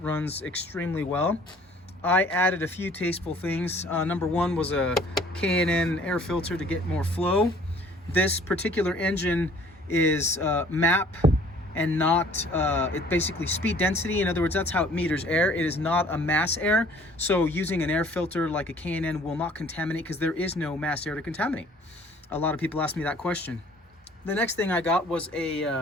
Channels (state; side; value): normal; both; correlation 0.54